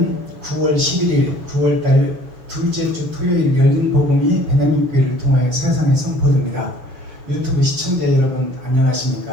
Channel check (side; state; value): left; late; 6.6 ms